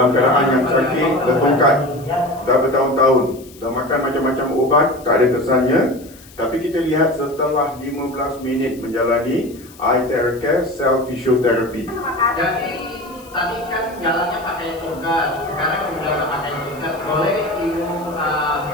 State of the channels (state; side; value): noise; left; hiss, 23 dB below the sound